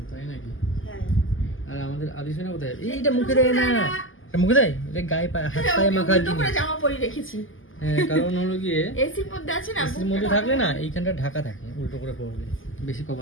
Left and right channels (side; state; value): right; late; 0.58 ms